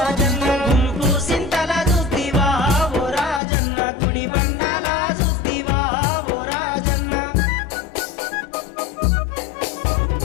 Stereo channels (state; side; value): drops out; right; at 3.4 s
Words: గుంపు సింతల చూద్దివా ఓ రాజన్న గుడి బండాల చూద్దివా ఓ రాజన్న